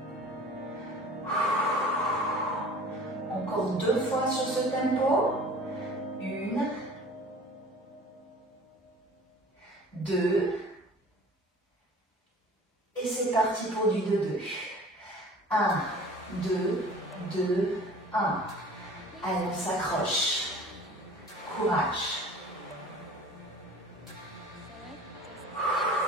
Encore 2 fois sur ce tempo. 1, 2. Et c'est parti pour du 2-2. 1, 2, 2, 1. Allez, on s'accroche. Courage.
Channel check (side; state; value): both; normal; correlation 0.45